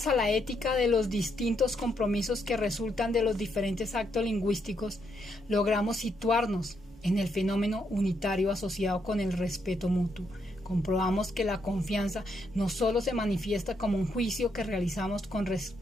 a la ética de los distintos compromisos que resultan de los diferentes actos lingüísticos, logramos situarnos en el fenómeno unitario asociado con el respeto mutuo, comprobamos que la confianza no solo se manifiesta como un juicio que realizamos con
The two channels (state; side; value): normal; both; correlation 0.77